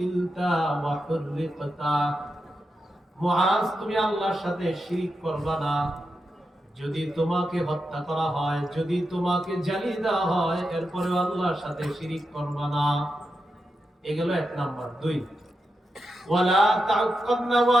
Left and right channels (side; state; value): both; normal; correlation 0.88